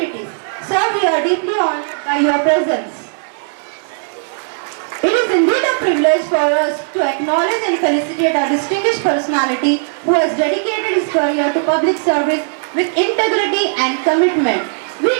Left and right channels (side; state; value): left; silent; digital silence